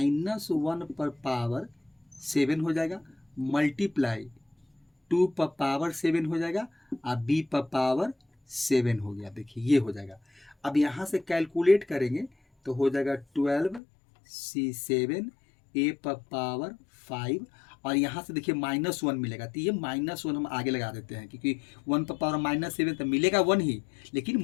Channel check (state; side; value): drops out; right; at 13.8 s